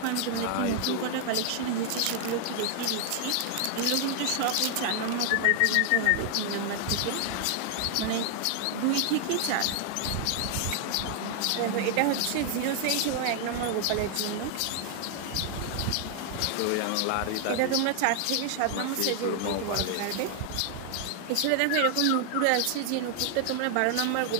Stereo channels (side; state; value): both; different; correlation 0.00